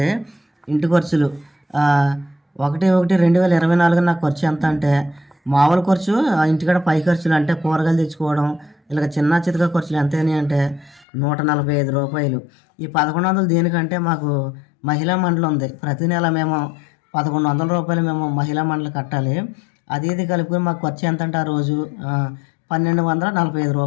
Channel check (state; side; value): drops out; right; at 11.1 s